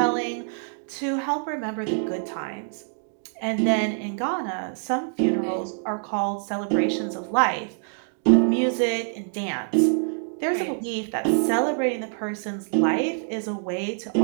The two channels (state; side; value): silent; left; 59 dB below the other